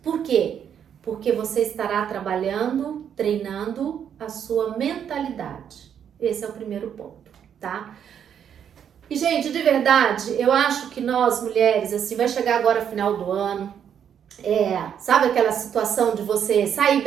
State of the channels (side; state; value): left; quieter; 8.6 dB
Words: Por quê? Porque você estará trabalhando, treinando a sua mentalidade. Esse é o primeiro ponto, tá? E, gente, de verdade, eu acho que nós, mulheres, assim, vai chegar agora final do ano, sabe aquela situação de você sair